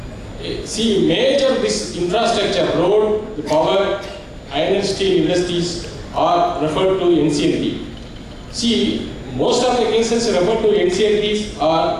see, major this infrastructure, road, the power, iron and steel industries are referred to NCLT. See, most of the cases referred to NCLTs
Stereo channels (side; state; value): both; identical; correlation 1.00